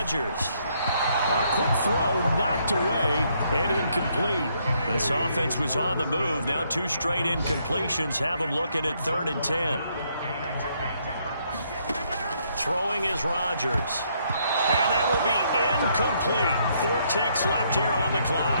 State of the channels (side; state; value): both; inverted; correlation -0.72